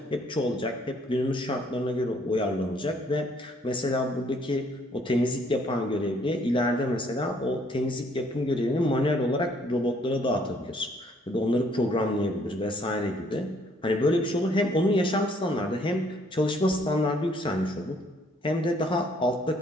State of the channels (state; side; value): normal; both; correlation 0.64